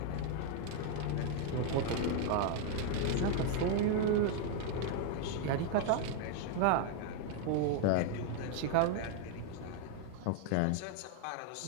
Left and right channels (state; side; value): different; both; correlation 0.00